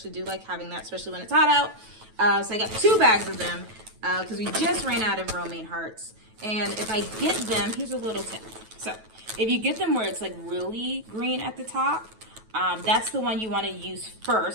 do like having that, especially when it's hot out. So I got 2 bags of them because we just ran out of Romaine Hearts. And if I get them, here's a little tip. So if you get them where it's like really green at the top, that's the one you want to use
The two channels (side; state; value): left; late; 9.2 ms